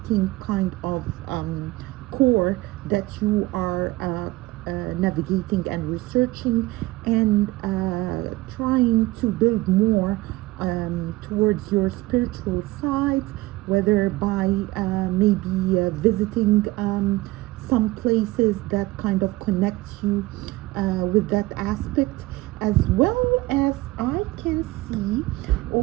kind of core that you are navigating and researching and trying to build more towards your spiritual side, whether by maybe visiting some places that kind of connect you with that aspect, as well as I can see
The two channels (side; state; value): left; quieter; 19.7 dB